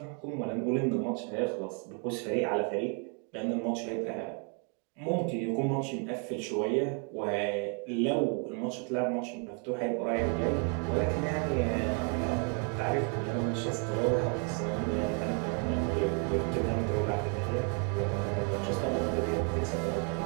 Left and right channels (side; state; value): left; quieter; 39.3 dB